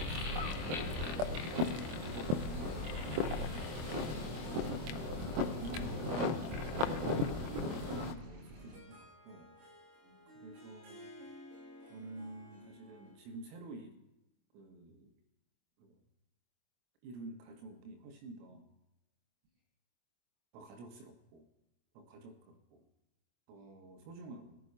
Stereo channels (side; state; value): left; late; 25 ms